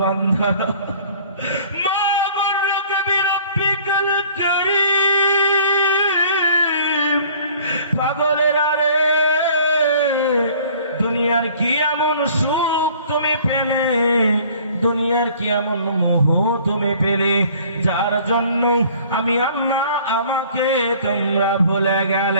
বান্দা, মা গুররুকা বিরাব্বিকাল কারীম। পাগলেরা রে, দুনিয়ার কি এমন সুখ তুমি পেলে, দুনিয়ার কি এমন মোহ তুমি পেলে, যার জন্য আমি আল্লাহ আমাকে তোমরা ভুলে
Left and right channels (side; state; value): both; inverted; correlation -0.52